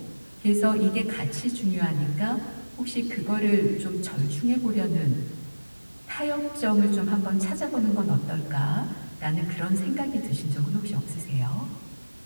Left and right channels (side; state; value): both; inverted; correlation -1.00